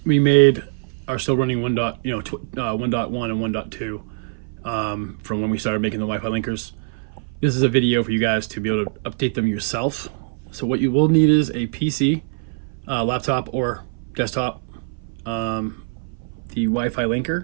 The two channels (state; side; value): silent; left; 60 dB below the other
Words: we made are still running 1.1 and 1.2 from when we started making the Wi-Fi linkers. This is a video for you guys to be able to update them yourself. So what you will need is a PC, laptop or desktop, the Wi-Fi linker,